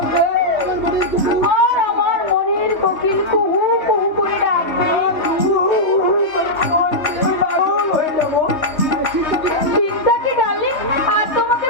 আর আমার মনের কোকিল কুহু কুহু করে ডাকবে। পাগল হয়ে যাবো। চিন্তা কি ডার্লিং, আর তোমাকে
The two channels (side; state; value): right; late; 3.2 ms